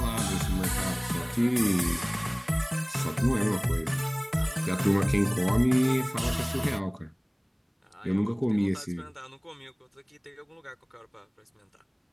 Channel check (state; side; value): identical; both; correlation 1.00